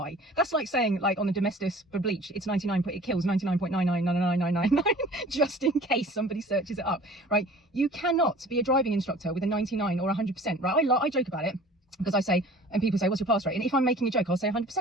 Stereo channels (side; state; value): both; normal; correlation 0.46